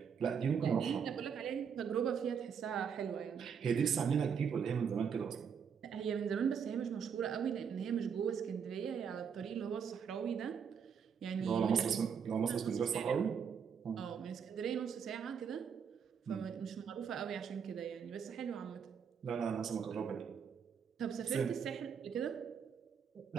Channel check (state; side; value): quieter; left; 7.0 dB